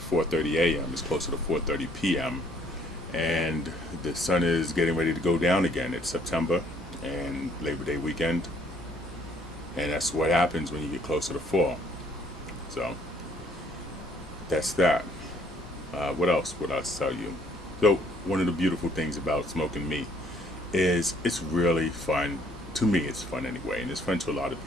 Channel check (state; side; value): normal; both; correlation 0.63